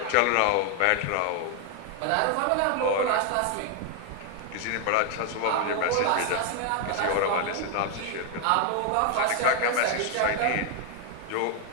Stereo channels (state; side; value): different; both; correlation 0.01